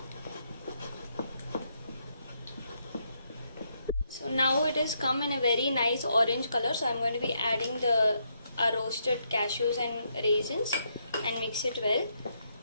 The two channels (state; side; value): inverted; both; correlation -0.77